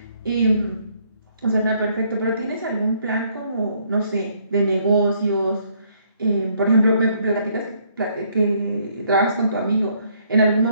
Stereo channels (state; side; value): inverted; both; correlation -0.67